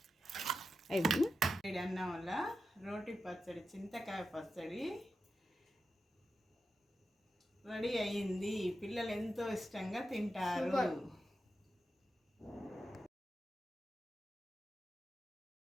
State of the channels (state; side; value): normal; both; correlation 0.89